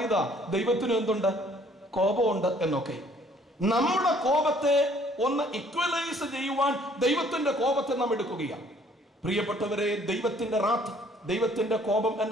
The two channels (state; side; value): normal; both; correlation 0.60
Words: ദൈവത്തിന് എന്തുണ്ട്? കോപമുണ്ട് എന്നൊക്കെ. നമ്മുടെ കോപത്തെ ഒന്ന് ഇക്വലൈസ് ചെയ്യുവാൻ ദൈവത്തിന്റെ കോപത്തെ നാം എടുക്കുകയാണ്. പ്രിയപ്പെട്ടവരെ, ദൈവത്തിന്റെ റാത്ത്, ദൈവത്തിന്റെ കോപം